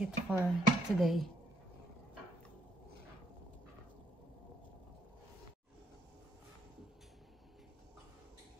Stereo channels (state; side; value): normal; both; correlation 0.73